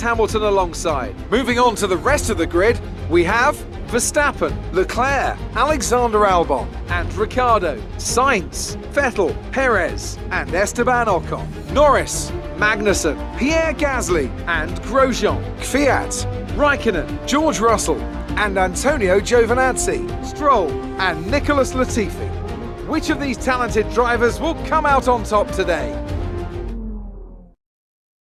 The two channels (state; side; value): identical; both; correlation 1.00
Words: alongside. Moving on to the rest of the grid, we have Verstappen, Leclerc, Alexander Albon, and Ricciardo, Sainz, Vettel, Perez, and Esteban Ocon. Norris, Magnussen, Pierre Gasly, and Grosjean, Kvyat, Raikkonen, George Russell, and Antonio Giovinazzi, Stroll, and Nicholas Latifi. Which of these talented drivers will come out on top today?